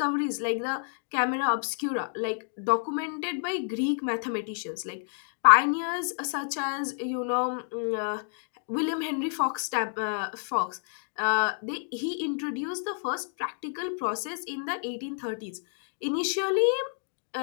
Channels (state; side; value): silent; right; 58 dB below the other